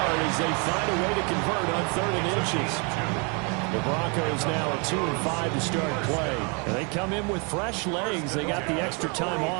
as they find a way to convert on 3rd and inches. The Broncos now at 2-5 to start play. And they come in with fresh legs. They got the extra time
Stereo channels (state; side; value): quieter; left; 33.0 dB